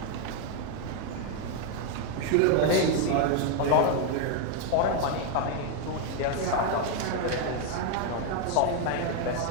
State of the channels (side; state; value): both; different; correlation 0.01